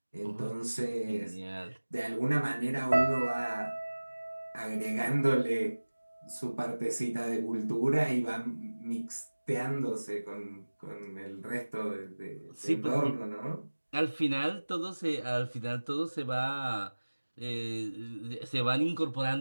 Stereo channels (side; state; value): both; inverted; correlation -1.00